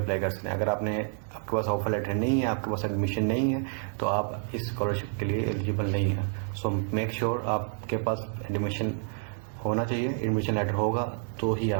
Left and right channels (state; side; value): silent; left; 59 dB below the other